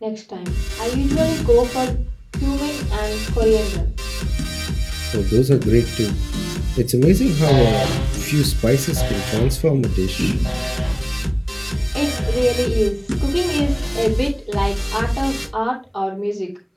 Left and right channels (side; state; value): both; identical; correlation 1.00